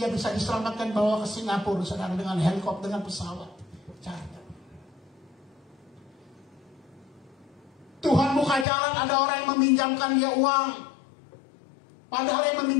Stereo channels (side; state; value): right; drops out; at 8.7 s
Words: bisa diselamatkan, bawa ke Singapura saudara dengan helikopter, dengan pesawat charter. Tuhan buka jalan, ada orang yang meminjamkan dia uang. Padahal yang